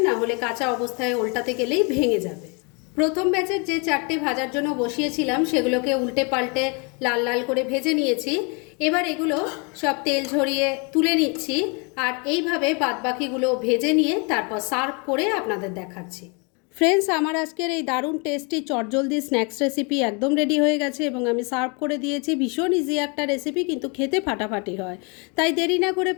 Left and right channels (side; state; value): right; quieter; 32.8 dB